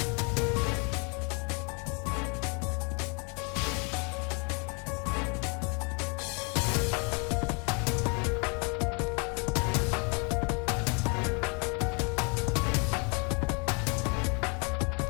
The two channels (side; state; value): right; quieter; 34.3 dB